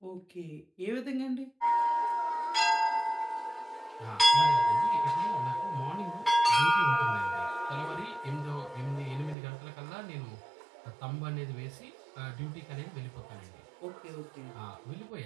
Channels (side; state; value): left; drops out; at 9.3 s